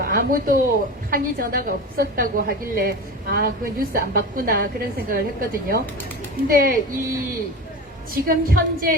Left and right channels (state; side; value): normal; both; correlation 0.28